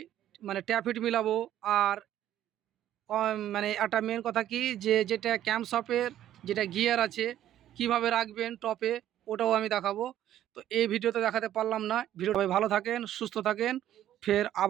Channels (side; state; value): left; quieter; 12.0 dB